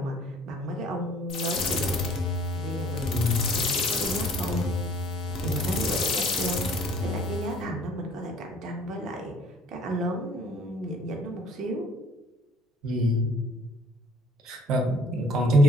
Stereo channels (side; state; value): both; normal; correlation 0.56